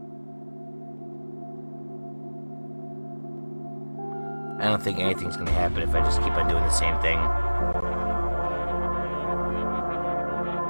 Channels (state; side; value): inverted; both; correlation -1.00